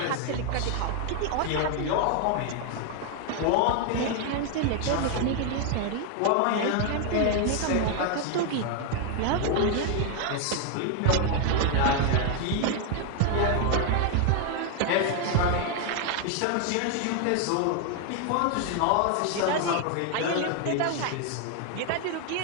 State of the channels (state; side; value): different; both; correlation 0.01